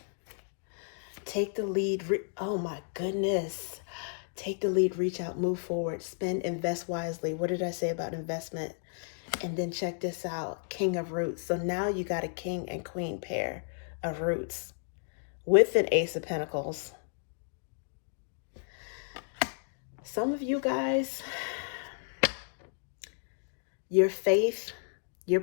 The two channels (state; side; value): silent; right; digital silence